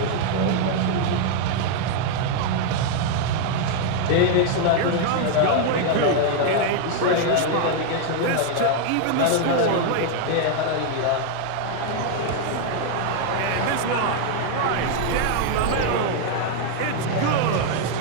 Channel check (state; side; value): different; both; correlation 0.00